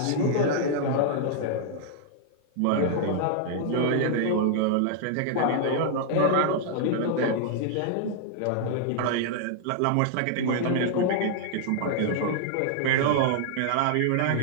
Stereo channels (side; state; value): both; different; correlation -0.01